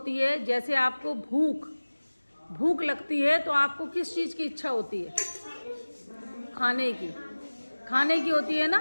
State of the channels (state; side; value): inverted; both; correlation -1.00